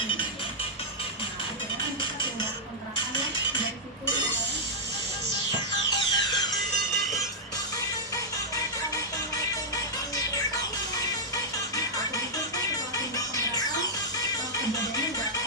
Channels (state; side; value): normal; both; correlation -0.09